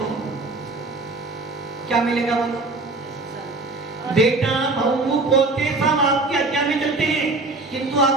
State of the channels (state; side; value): quieter; left; 3.4 dB